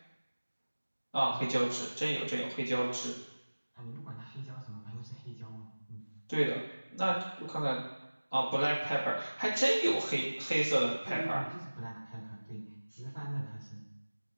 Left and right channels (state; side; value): inverted; both; correlation -1.00